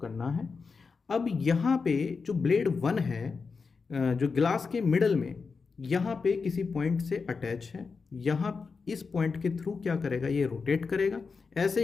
करना है। अब यहाँ पे जो ब्लेड 1 है, जो ग्लास के मिडल में यहाँ पे किसी पॉइंट से अटैच है। यहाँ इस पॉइंट के थ्रू क्या करेगा, ये रोटेट करेगा।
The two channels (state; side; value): quieter; right; 4.9 dB